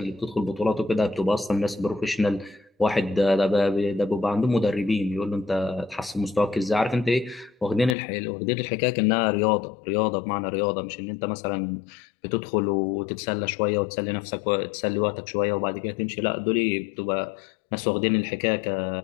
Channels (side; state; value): right; drops out; at 8.0 s